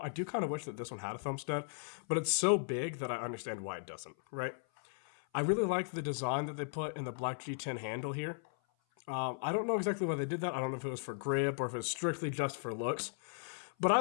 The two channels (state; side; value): silent; right; 53 dB below the other